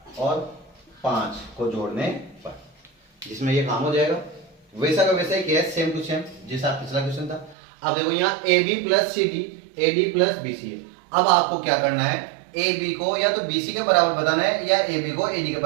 और 5 को जोड़ने पर, जिसमें ये काम हो जाएगा। वैसा का वैसा ही किया है, सेम टू सेम जैसा पिछला क्वेश्चन था। अब देखो यहाँ A B plus C D, A D plus B C है। अब आपको क्या करना है, ए बी को या तो बी सी के बराबर बताना है या ए बी को ए डी के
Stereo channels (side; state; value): left; drops out; at 7.6 s